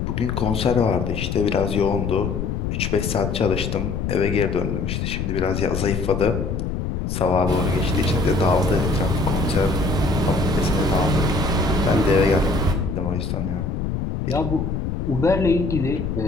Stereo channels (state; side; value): noise; left; rumble, 2 dB below the sound